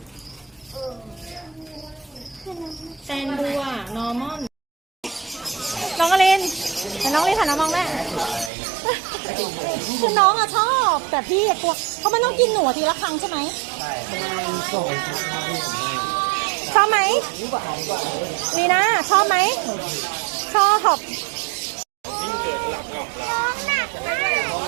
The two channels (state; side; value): drops out; left; at 8.5 s